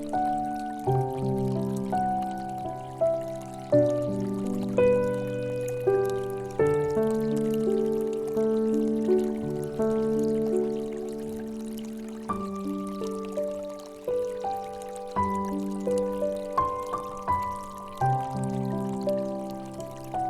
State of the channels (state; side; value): identical; both; correlation 1.00